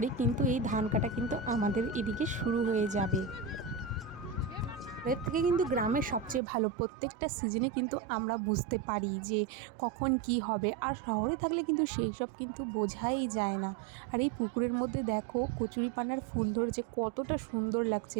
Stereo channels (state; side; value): drops out; left; at 6.4 s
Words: কিন্তু এই ধান কাটা কিন্তু আমাদের এদিকে শুরু হয়ে যাবে। এর থেকে কিন্তু গ্রামের সবচেয়ে ভালো, প্রত্যেকটা সিজনে কিন্তু আমরা বুঝতে পারি যে কখন কি হবে। আর শহরে থাকলে কিন্তু সেই সব কিন্তু বোঝাই যায় না। আর এই পুকুরের মধ্যে দেখো কচুরিপানার ফুল ধরেছে, কতটা সুন্দর লাগছে।